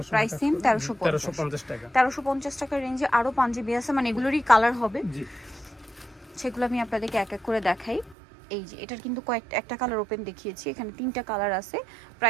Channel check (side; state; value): left; drops out; at 8.2 s